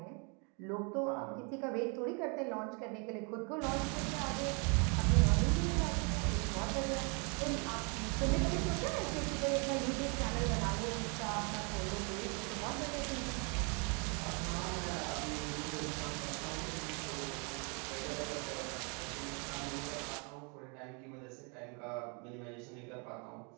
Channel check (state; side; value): quieter; left; 34.8 dB